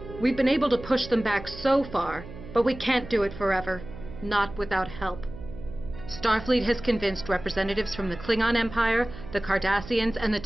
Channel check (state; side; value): noise; right; hum, 14 dB below the sound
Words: We've been able to push them back so far, but we can't do it forever. Not without help. Starfleet has convinced representatives from the Klingon Empire, the Cardassians, and the